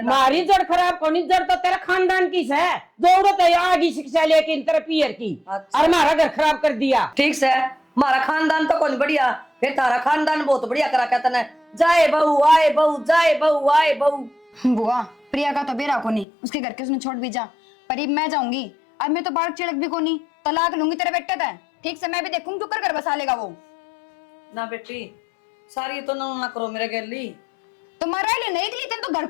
ना। मारी जड़ खराब कोनी जड़ तो तेरा खानदान की है, जरूरत है आगे शिक्षा लेके इन तरह पियर की, अच्छा। और हमारा घर खराब कर दिया। ठीक से हमारा खानदान तो कौन बढ़िया, फिर तारा खानदान बहुत बढ़िया करा कहता ना, जाए बहू आए बहू जाए बहू आए बहू। बुआ प्रिया का तो बेरा को नहीं, उसके घर के उसने छोड़ भी जा, पर अब मैं जाऊंगी, अब मैं तो बाढ़ चिड़क भी को नहीं, तलाक लूंगी तेरे बेटे तय, ठीक से मैं भी देखूंगी तू कर घर बसा लेगा वो। ना बेटी सारी तो ना करो मेरे गली। तो मरा ले नहीं के लिए तेन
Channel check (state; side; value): drops out; right; at 16.2 s